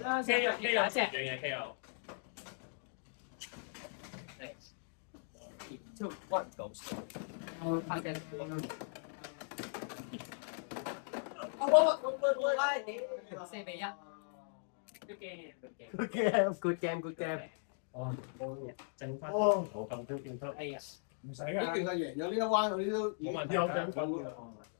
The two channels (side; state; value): right; silent; digital silence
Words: K 有樣嘢 K 有。 2, 1， go！ 發射。4比1。Good game。哦，剩翻哦，冇咁多見得。哎呀，唔使呢段㗎。係贏咗呢一彎，嗰啲都冇問題有獎品㗎。